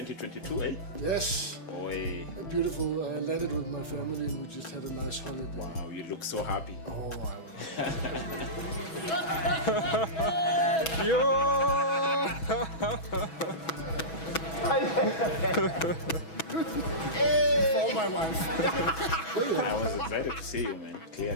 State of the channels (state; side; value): late; right; 6.1 ms